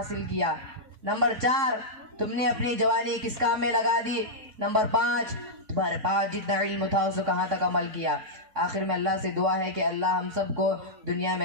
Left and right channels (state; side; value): late; left; 3.6 ms